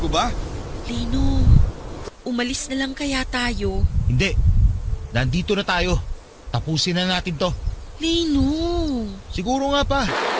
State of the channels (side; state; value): both; identical; correlation 1.00